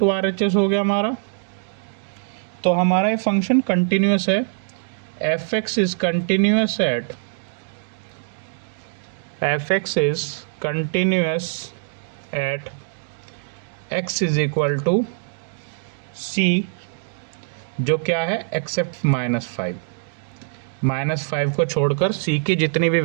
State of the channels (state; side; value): silent; left; digital silence